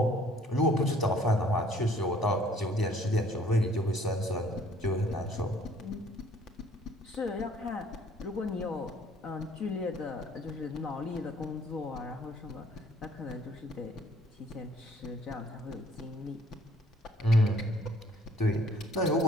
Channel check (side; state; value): both; normal; correlation 0.58